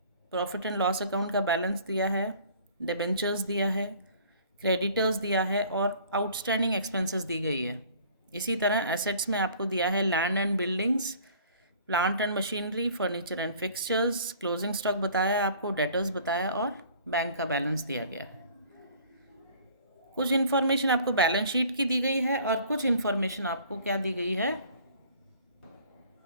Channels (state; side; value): inverted; both; correlation -0.51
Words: profit and loss account का बैलेंस दिया है, डिबेंचर्स दिया है, क्रेडिटर्स दिया है और आउटस्टैंडिंग एक्सपेंसेस दी गई है। इसी तरह एसेट्स में आपको दिया है land and buildings, plant and machinery, furniture and fixtures, closing stock बताया आपको, डेटर्स बताया और बैंक का बैलेंस दिया गया है। कुछ इन्फॉर्मेशन आपको बैलेंस शीट की दी गई है और कुछ इन्फॉर्मेशन आपको क्या दी गई है?